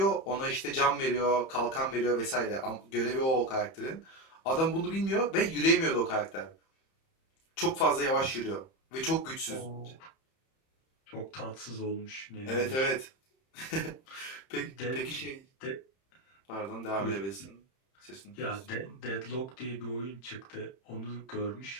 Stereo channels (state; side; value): late; right; 31 ms